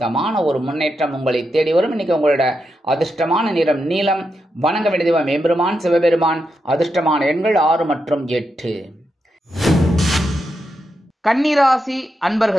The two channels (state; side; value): normal; both; correlation 0.85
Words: ஒரு முன்னேற்றம் உங்களை தேடி வரும். இன்னைக்கு உங்களோட அதிர்ஷ்டமான நிறம் நீலம். வணங்க வேண்டியது எம்பெருமான் சிவபெருமான். அதிர்ஷ்டமான எண்கள் 6 மற்றும் 8. கன்னிராசி